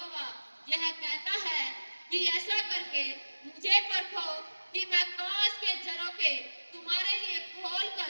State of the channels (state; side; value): inverted; both; correlation -1.00